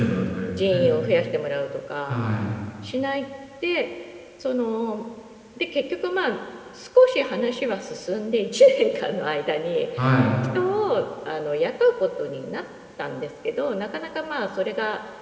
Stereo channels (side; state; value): both; identical; correlation 1.00